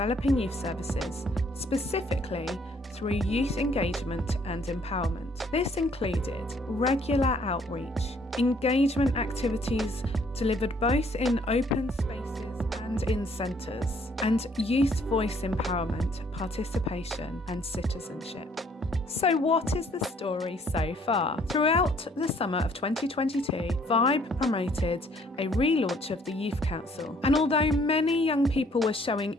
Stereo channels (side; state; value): both; normal; correlation 0.62